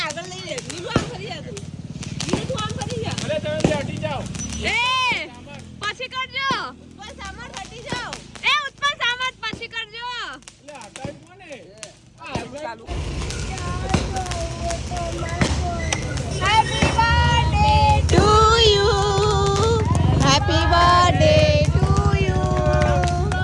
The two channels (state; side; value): identical; both; correlation 1.00